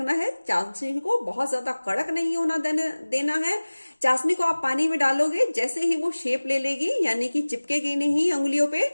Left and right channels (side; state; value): both; inverted; correlation -1.00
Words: है, चाशनी को बहुत ज्यादा कड़क नहीं होना देना है। चाशनी को आप पानी में डालोगे, जैसे ही वो शेप ले लेगी, यानी कि चिपकेगी नहीं अंगुलियों पे,